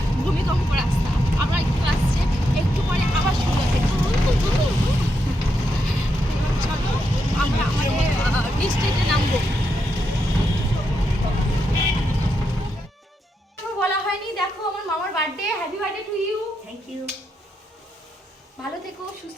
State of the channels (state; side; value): normal; both; correlation 0.82